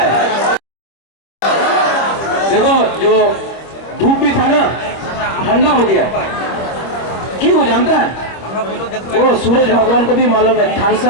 देखो जो धूप भी था ना, ठंडा हो गया। क्यों हो जानता है? वो सूरज भगवान को भी मालूम है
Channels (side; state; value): right; late; 25 ms